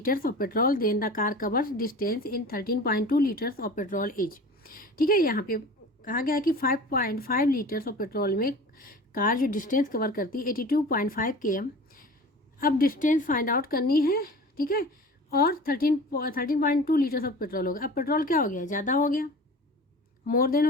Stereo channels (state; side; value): normal; both; correlation 0.38